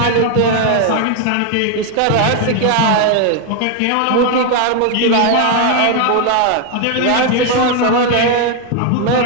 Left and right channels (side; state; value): both; different; correlation 0.01